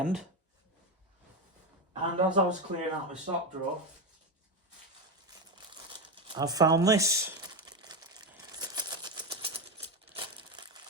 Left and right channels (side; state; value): both; normal; correlation 0.13